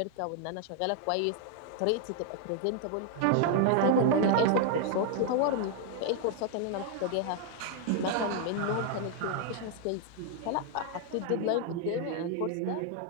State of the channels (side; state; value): both; different; correlation 0.00